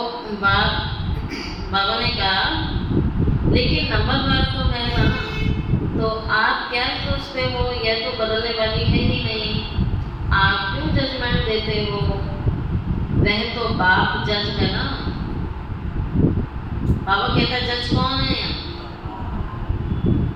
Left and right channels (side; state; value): both; identical; correlation 1.00